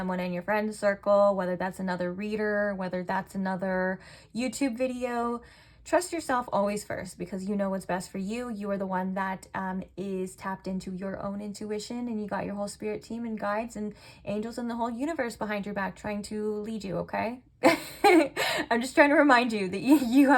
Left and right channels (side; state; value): both; identical; correlation 1.00